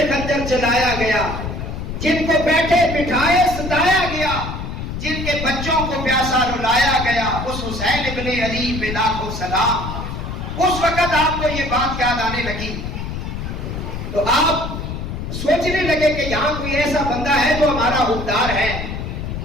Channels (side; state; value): left; noise; rumble, 6 dB below the sound